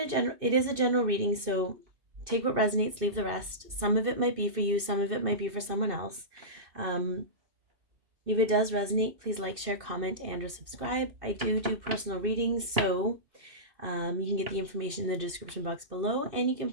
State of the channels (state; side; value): late; left; 2.6 ms